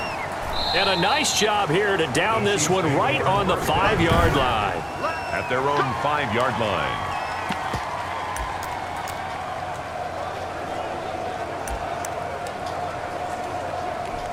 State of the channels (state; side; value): identical; both; correlation 1.00